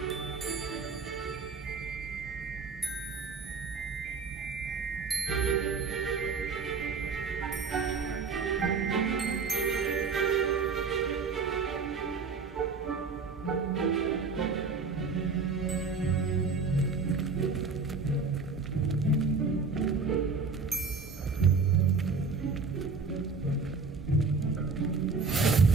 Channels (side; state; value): left; quieter; 4.7 dB